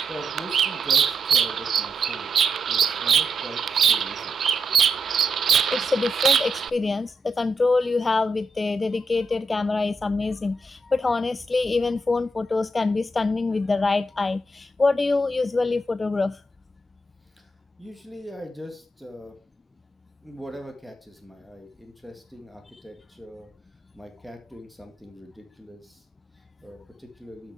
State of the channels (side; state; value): both; normal; correlation 0.82